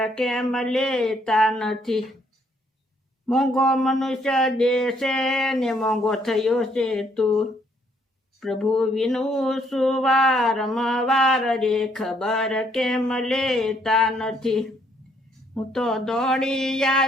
કેમ લેતા નથી. મોંઘો મનુષ્ય દેશે ને મોંઘો થયો છે તું, પ્રભુ વિનું સુવારમવાર રે, ખબર કેમ લેતા નથી. હું તો દોડી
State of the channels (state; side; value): normal; both; correlation 0.69